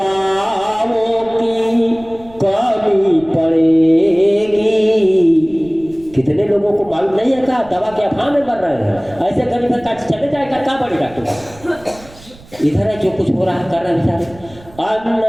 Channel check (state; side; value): noise; right; rumble, 23 dB below the sound